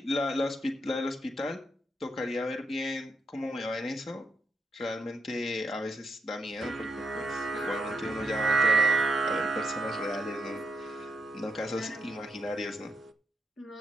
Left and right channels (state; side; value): normal; both; correlation 0.80